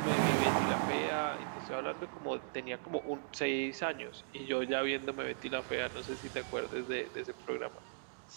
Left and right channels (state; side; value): silent; left; digital silence